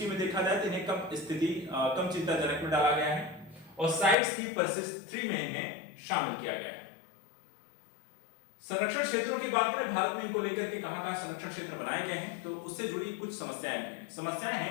में देखा जाए तो इन्हें कम चिंताजनक में डाला गया है और साइट्स की परसिस्ट 3 में इन्हें शामिल किया गया है। संरक्षण क्षेत्रों की बात करें, भारत में इनको लेकर के कहां संरक्षण क्षेत्र बनाए गए हैं तो उससे जुड़ी कुछ समस्याएं हैं। समस्याएं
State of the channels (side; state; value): right; drops out; at 4.2 s